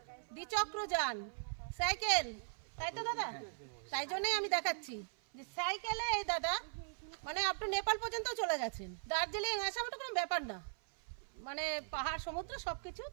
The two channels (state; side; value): silent; left; 52 dB below the other